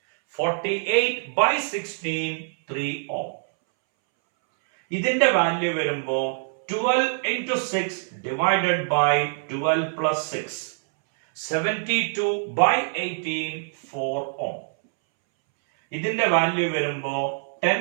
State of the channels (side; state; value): left; silent; 62 dB below the other